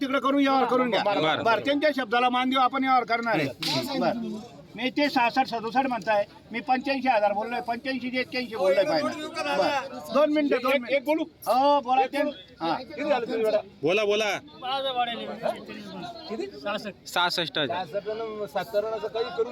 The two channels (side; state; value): both; identical; correlation 1.00